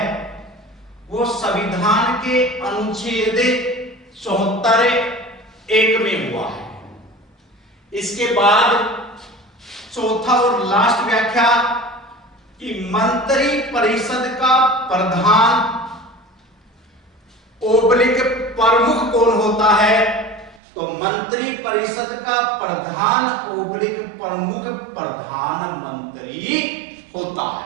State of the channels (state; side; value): drops out; left; at 20.6 s